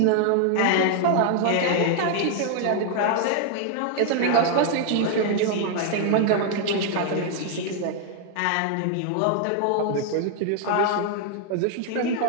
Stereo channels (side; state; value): both; different; correlation 0.00